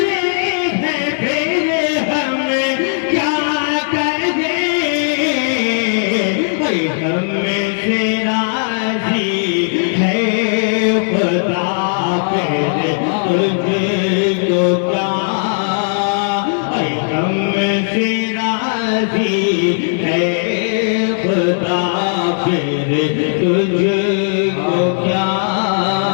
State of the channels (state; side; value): silent; right; digital silence